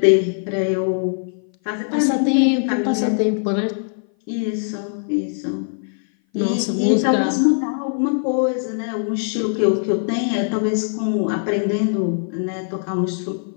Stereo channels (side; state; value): right; silent; 58 dB below the other